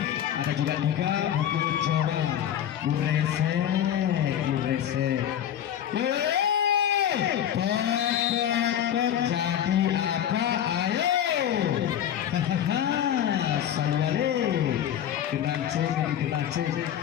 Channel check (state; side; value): quieter; right; 10.3 dB